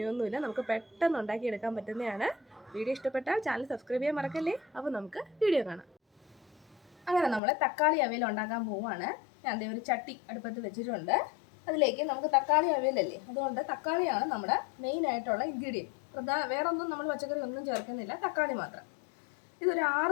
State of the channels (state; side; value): drops out; right; at 7.4 s